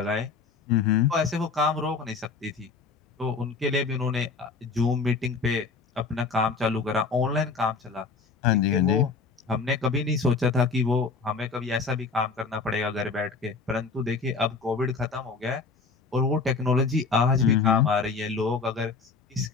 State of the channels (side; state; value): right; quieter; 4.7 dB